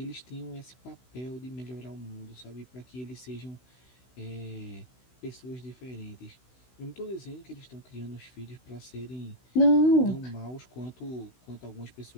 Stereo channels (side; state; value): right; late; 16 ms